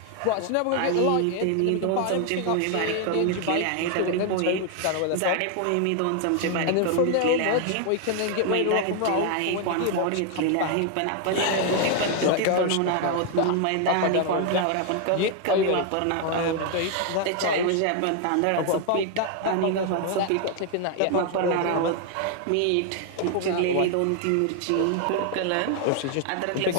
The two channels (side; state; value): both; different; correlation 0.00